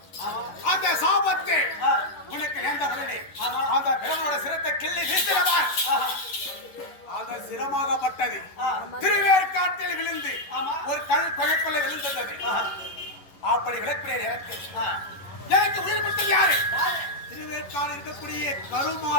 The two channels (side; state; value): right; late; 11 ms